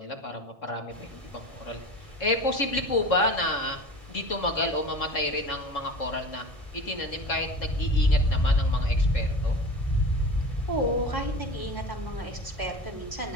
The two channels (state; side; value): late; right; 1.6 ms